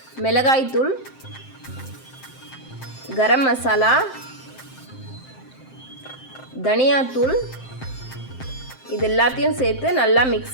மிளகாய் தூள், கரம் மசாலா, தனியாத்தூள், இது எல்லாத்தையும் சேர்த்து நல்லா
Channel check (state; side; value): late; right; 7.7 ms